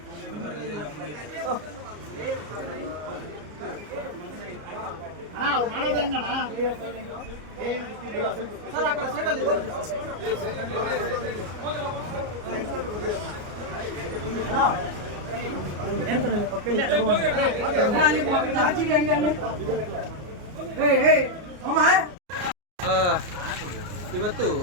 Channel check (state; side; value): late; left; 33 ms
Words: ಸರ್ ಆ ಕಡೆ ಸೈಡಲ್ಲಿ ಇವತ್ತು